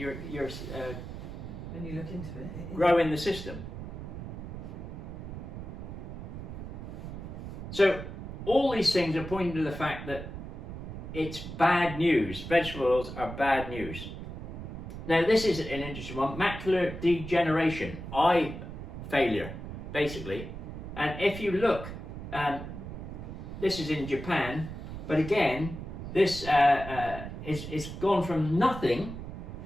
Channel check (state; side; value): noise; right; rumble, 9 dB below the sound